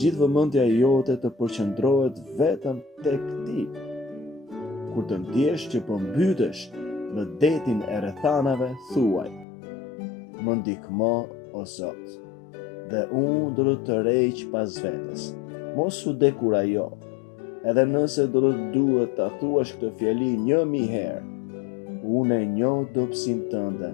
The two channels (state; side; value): drops out; right; at 9.5 s